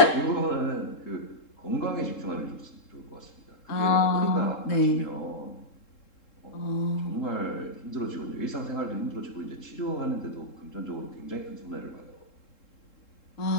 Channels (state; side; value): late; right; 3.7 ms